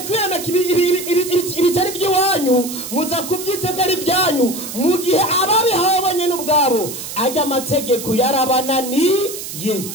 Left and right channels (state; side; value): noise; right; hiss, 9 dB below the sound